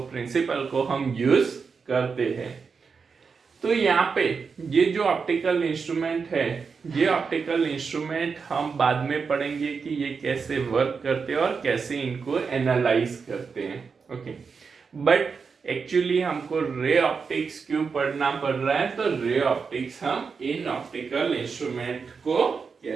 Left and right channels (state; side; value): quieter; left; 5.4 dB